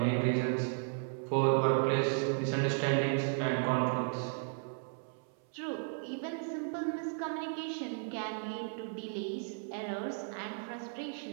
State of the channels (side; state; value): left; silent; 55 dB below the other